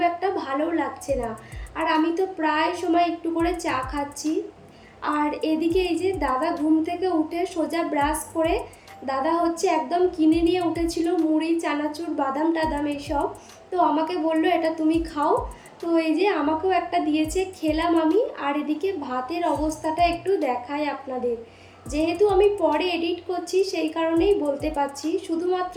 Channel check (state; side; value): identical; both; correlation 1.00